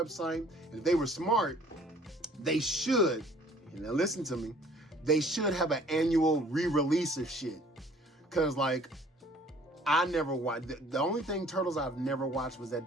And if they were smart, they should, and now listen to me, they should have an annual re-release of shit. Cause like, I never watched, the only thing Turtles I've never watched was that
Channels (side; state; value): both; normal; correlation 0.54